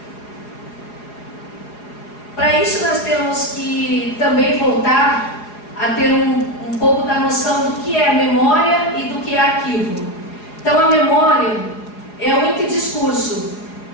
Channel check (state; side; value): late; right; 4.8 ms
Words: Para isso nós temos que também voltar a ter um pouco da noção do que é memória e do que é arquivo. Então a memória é o interdiscurso,